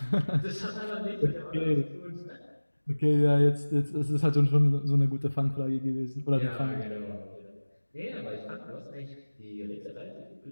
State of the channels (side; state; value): both; inverted; correlation -1.00